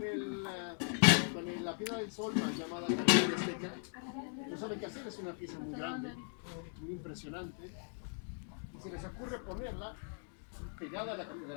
la piedra del sol, más llamada Capilla Azteca? No saben qué hacer, es una pieza muy grande, muy impresionante. Y se les ocurre ponerla pegada a la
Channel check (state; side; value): silent; right; 52 dB below the other